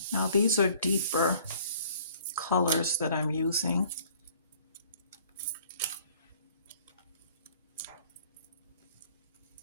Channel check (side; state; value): both; inverted; correlation -0.56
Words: Now these are deeper colors that I'm using.